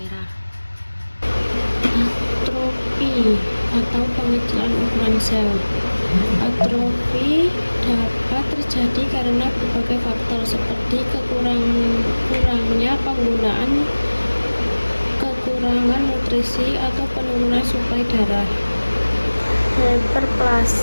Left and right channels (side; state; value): both; inverted; correlation -1.00